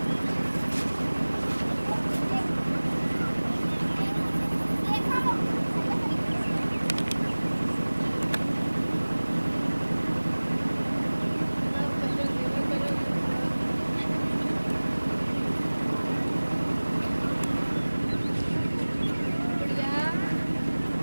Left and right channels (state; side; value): inverted; both; correlation -1.00